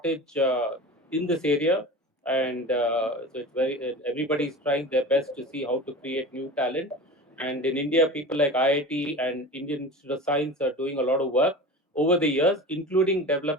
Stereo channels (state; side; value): normal; both; correlation 0.33